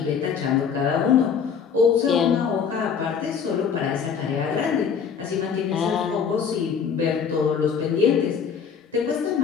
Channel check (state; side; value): quieter; right; 6.8 dB